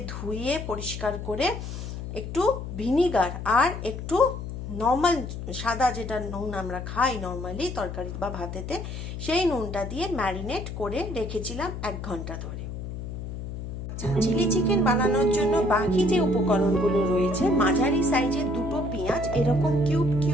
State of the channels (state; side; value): noise; left; hum, 7 dB below the sound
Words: ধুয়ে পরিষ্কার করে একটু ভিনিগার আর একটু নর্মাল সাদা যেটা নুন আমরা খাই নর্মালি তরকারি বা ভাতেতে, সেই নুনটা দিয়ে ম্যারিনেট করে রেখেছিলাম 1 ঘন্টা ধরে। চিলি চিকেন বানানোর জন্য বাকি যে উপকরণগুলো রয়েছে, মাঝারি সাইজের 2টো পেঁয়াজ এরকম কিউব